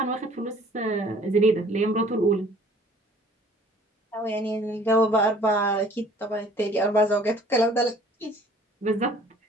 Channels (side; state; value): both; normal; correlation 0.54